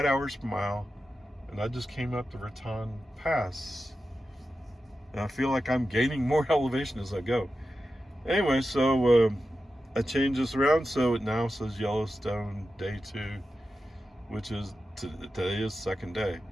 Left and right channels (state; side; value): normal; both; correlation 0.91